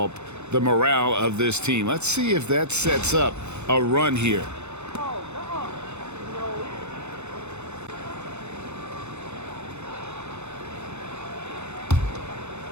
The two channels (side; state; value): left; late; 0.82 ms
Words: the morale of this team. Let's see if that sets up a run here.